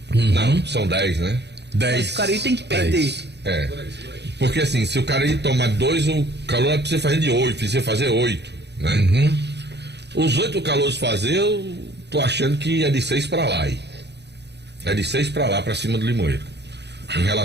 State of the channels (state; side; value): late; left; 0.50 ms